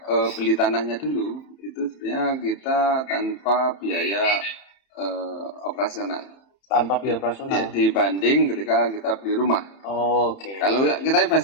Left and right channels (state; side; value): late; right; 31 ms